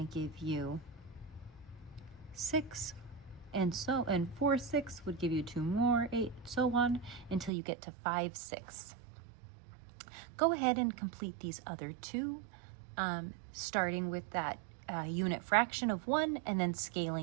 give you 6. And 4/6 would give you 2 more, 8, so on, until you get to 5/6. Go ahead and complete these other 2, starting with that unit fraction of 1 and then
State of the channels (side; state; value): left; drops out; at 7.5 s